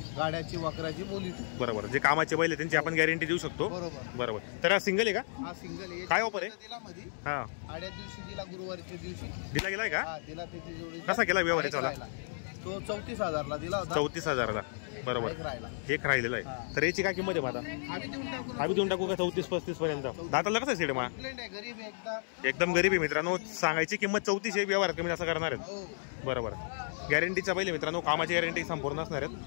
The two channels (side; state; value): right; silent; digital silence